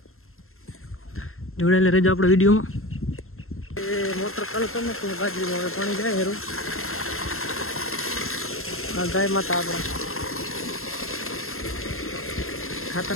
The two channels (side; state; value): right; late; 0.62 ms